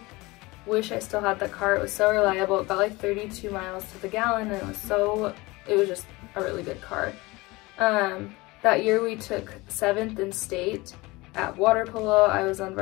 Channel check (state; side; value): quieter; right; 22.4 dB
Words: wish I still had that car. It was so reliable. It got like 32 miles to the gallon, and it was just a really good car. That year we took 7th in state at water polo. I was on